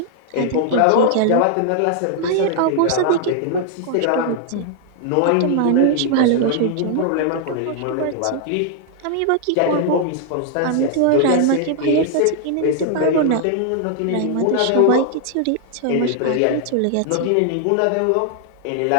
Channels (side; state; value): both; different; correlation 0.00